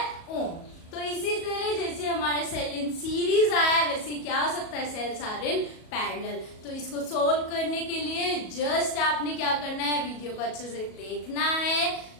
ओम। तो इसी तरह जैसे हमारे सेल इन सीरीज आया, वैसे क्या हो सकता है सेल्स आर इन पैरेलल। तो इसको सोल्व करने के लिए जस्ट आपने क्या करना है, वीडियो को अच्छे से देखना है,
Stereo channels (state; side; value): late; right; 37 ms